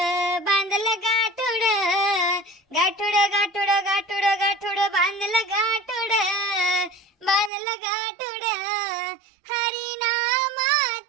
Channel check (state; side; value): drops out; left; at 7.5 s